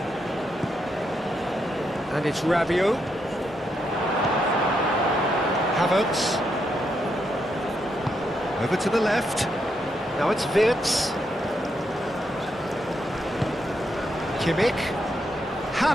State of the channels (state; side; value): normal; both; correlation 0.80